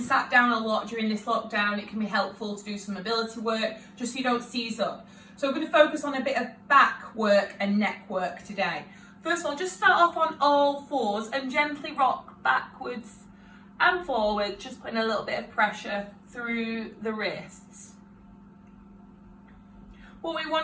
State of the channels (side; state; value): both; identical; correlation 1.00